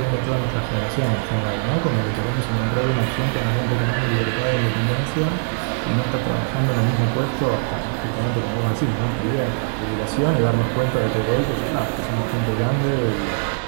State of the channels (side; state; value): left; silent; digital silence